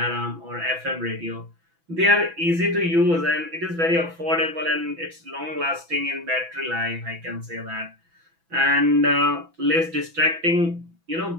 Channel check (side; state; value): left; late; 6.0 ms